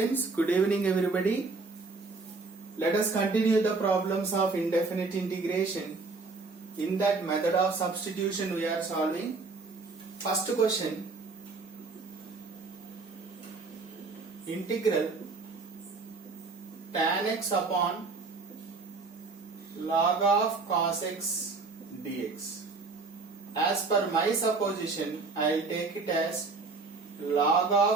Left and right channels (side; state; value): left; quieter; 4.1 dB